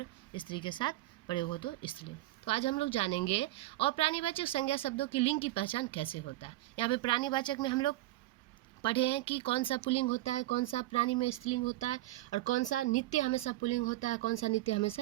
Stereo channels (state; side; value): quieter; left; 17.2 dB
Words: स्त्री के साथ प्रयोग हो तो स्त्रीलिंग। तो आज हम लोग जानेंगे और प्राणीवाचक संज्ञा शब्दों की लिंग की पहचान कैसे होता है। यहाँ पे प्राणीवाचक में हम लोग पढ़े हैं कि कौन सा पुल्लिंग होता है, कौन सा प्राणी में स्त्रीलिंग होता है, और कौन सा नित्य हमेशा पुल्लिंग होता है, कौन सा नित्य